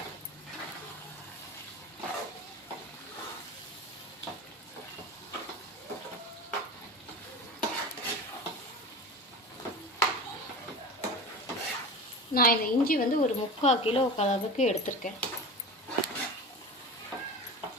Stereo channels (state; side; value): normal; both; correlation 0.30